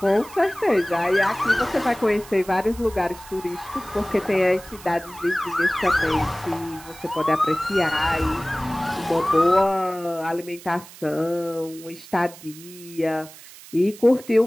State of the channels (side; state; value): right; noise; hiss, 19 dB below the sound